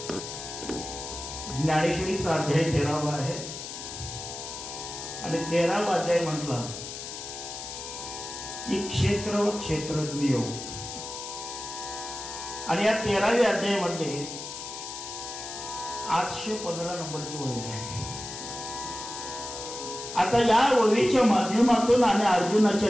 ज्ञानेश्वरीचा अध्याय 13वा आहे आणि 13वा अध्याय म्हटला की क्षेत्र व क्षेत्रज्ञ योग. आणि या 13व्या अध्यायामध्ये 815 नंबरची ओवी आहे. आता या ओवीच्या माध्यमातून आणि अर्जुनाच्या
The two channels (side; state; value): left; noise; hiss, 9 dB below the sound